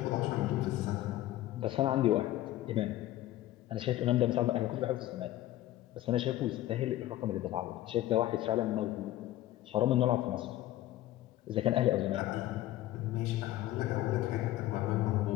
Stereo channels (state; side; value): quieter; right; 14.7 dB